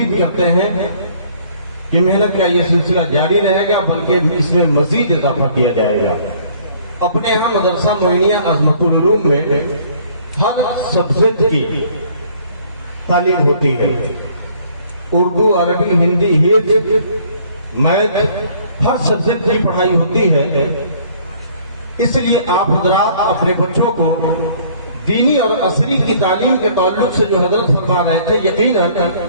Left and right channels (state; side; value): inverted; both; correlation -0.58